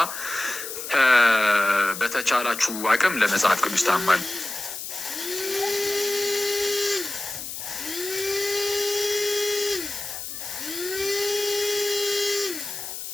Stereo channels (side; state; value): left; noise; hiss, 8 dB below the sound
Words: በተቻላችሁ አቅም ለመጽሐፍ ቅዱስ ታማኝ